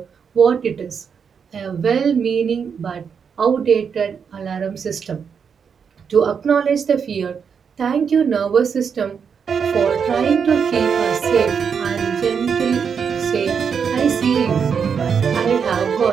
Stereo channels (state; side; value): quieter; left; 6.6 dB